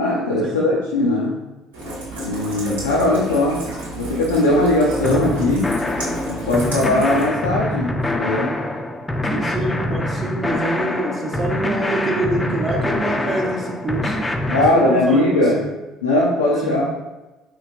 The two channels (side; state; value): both; normal; correlation 0.45